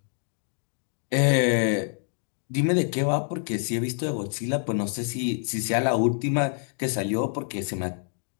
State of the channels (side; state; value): right; silent; 60 dB below the other